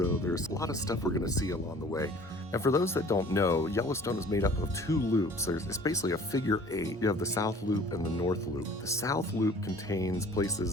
there's a lot of stuff we're gonna see along the way. And for those that don't know, Yellowstone is made up of 2 loops. It's basically a figure 8. You have the South Loop and the North Loop. The South Loop contains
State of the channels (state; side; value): normal; both; correlation 0.49